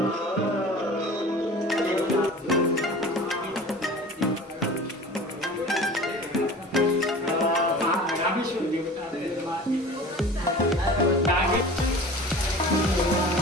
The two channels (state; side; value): normal; both; correlation 0.40